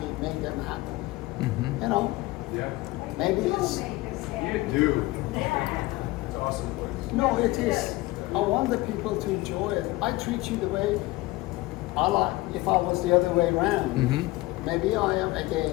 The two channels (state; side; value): quieter; right; 19.9 dB